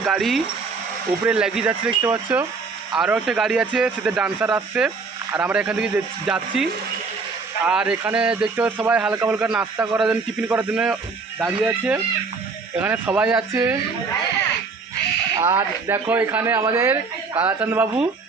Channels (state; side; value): quieter; left; 4.5 dB